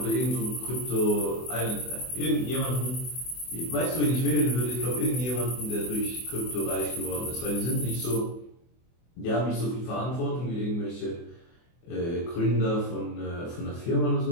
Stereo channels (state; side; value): late; right; 24 ms